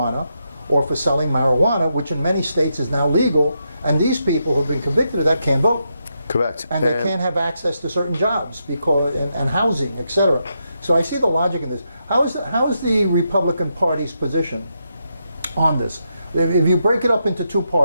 or for selling marijuana, which in many states is now legal, and these people who have been convicted of that can't vote. Correct. And they can't have access to certain jobs because and housing, etc. So I see the logic in this. How is the Republican Party's position on this? If you break it up into 2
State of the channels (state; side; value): inverted; both; correlation -0.83